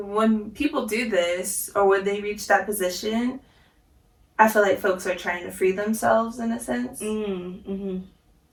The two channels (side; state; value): both; identical; correlation 1.00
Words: people do this, or when they reach that position, I feel like folks are trying to free themselves in a sense.